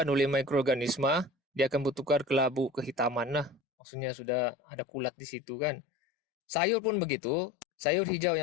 oleh mikroorganisma, dia akan bertukar kelabu kehitaman lah. Maksudnya sudah ada kulat di situ kan. Sayur pun begitu. Sayur hijau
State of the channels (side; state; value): right; drops out; at 3.6 s